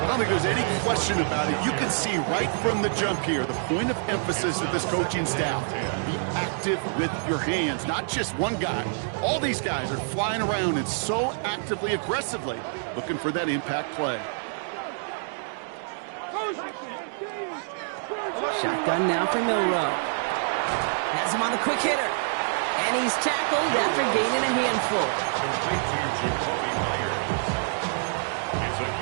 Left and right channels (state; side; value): silent; left; digital silence